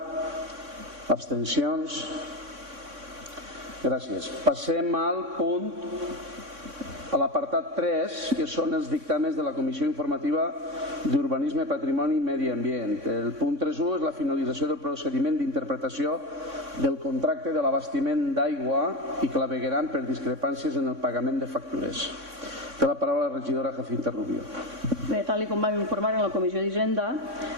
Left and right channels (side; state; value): left; late; 3.6 ms